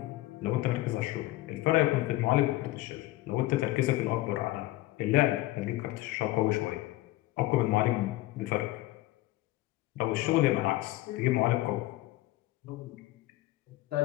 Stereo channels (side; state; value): right; quieter; 17.6 dB